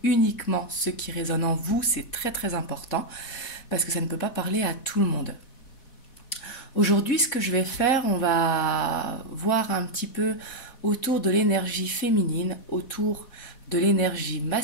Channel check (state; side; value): late; right; 4.1 ms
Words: uniquement ce qui résonne en vous, c'est très très important parce que ça ne peut pas parler à tout le monde. Aujourd'hui, ce que je vais faire, on va voir un petit peu autour de l'énergie féminine, autour de l'énergie